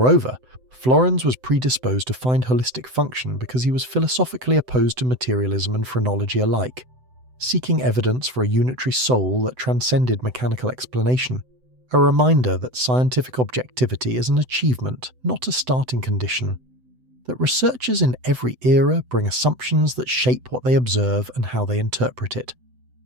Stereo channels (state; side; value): late; left; 7.9 ms